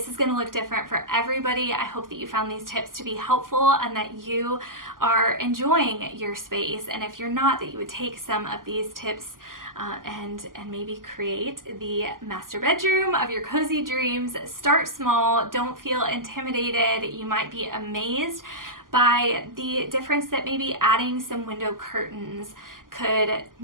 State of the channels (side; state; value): left; late; 0.91 ms